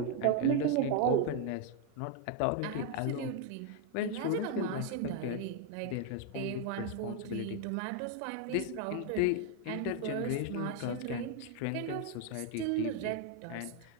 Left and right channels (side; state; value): both; different; correlation 0.00